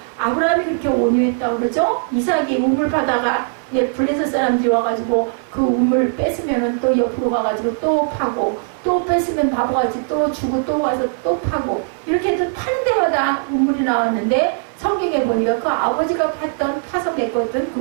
아브라함이 그렇게 온유했다고 그러죠. 이삭이 우물 파다가 블레셋 사람들이 와가지고 그 우물 뺏으면 또 옆으로 가가지고 또 파고, 또 뺏으면 바보같이 또 주고 또 가서 또 파고, 이렇게 해서 파는 데마다 우물이 나왔는데 성경에 보니까 그 아버지가 파서 메꿨던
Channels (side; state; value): left; silent; 57 dB below the other